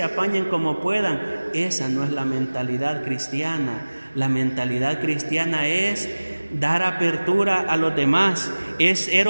apañen como puedan. Esa no es la mentalidad cristiana. La mentalidad cristiana es dar apertura a los demás, es ser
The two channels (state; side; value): inverted; both; correlation -1.00